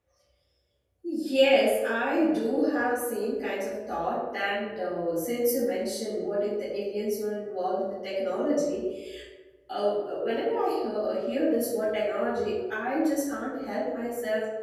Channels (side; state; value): both; identical; correlation 1.00